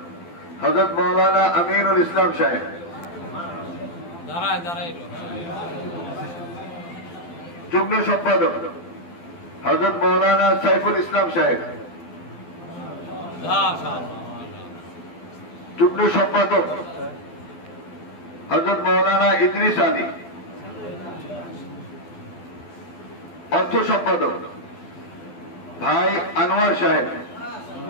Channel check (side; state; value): right; late; 12 ms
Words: হযরত মাওলানা আমিনুল ইসলাম সাহেব, যুগ্ম সম্পাদক হযরত মাওলানা সাইফুল ইসলাম সাহেব, যুগ্ম সম্পাদক হযরত মাওলানা ইদ্রিস আলী, অর্থ সম্পাদক ভাই আনোয়ার সাহেব,